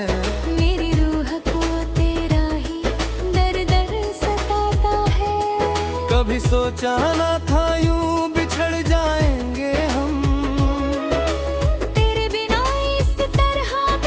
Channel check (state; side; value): identical; both; correlation 1.00